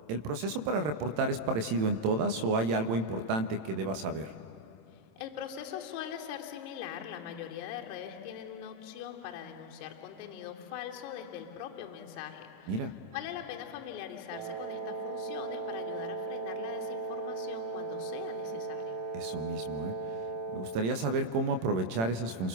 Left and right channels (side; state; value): left; late; 27 ms